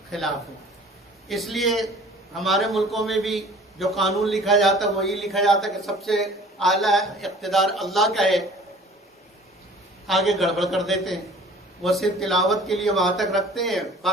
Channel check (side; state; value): both; normal; correlation 0.49